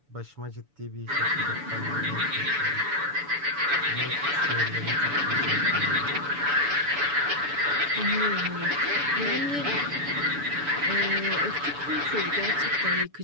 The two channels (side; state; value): left; late; 7.0 ms